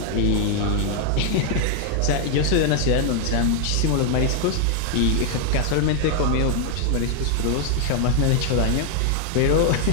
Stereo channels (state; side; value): different; both; correlation 0.00